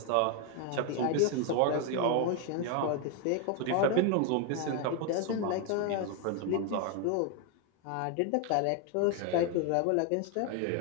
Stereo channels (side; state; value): both; different; correlation 0.01